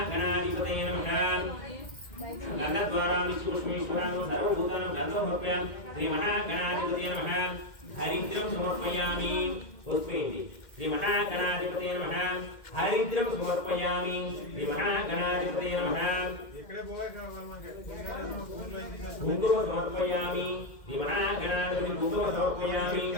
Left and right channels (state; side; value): late; right; 2.1 ms